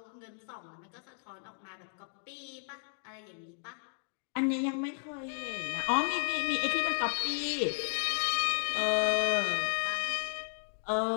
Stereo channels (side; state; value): right; silent; 55 dB below the other